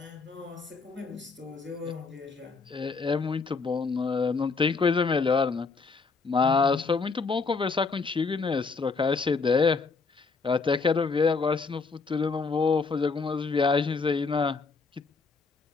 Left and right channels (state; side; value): quieter; right; 4.5 dB